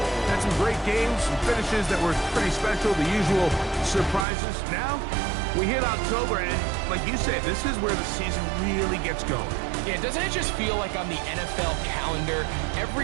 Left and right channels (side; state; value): left; drops out; at 4.2 s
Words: Had some great games, some finishes that were pretty special, the usual surprises. Now, we hit October, and like you said, this is where the season really gets going. Yeah, doesn't it just feel like on the NFL calendar,